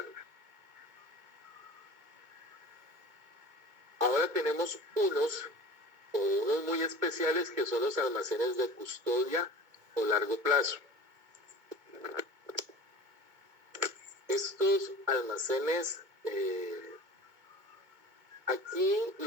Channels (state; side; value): late; left; 2.2 ms